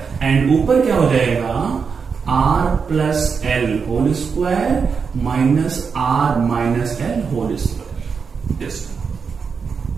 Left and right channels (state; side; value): quieter; left; 5.7 dB